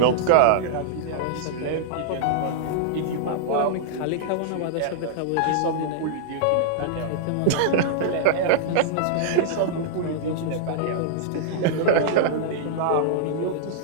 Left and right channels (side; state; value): both; different; correlation -0.02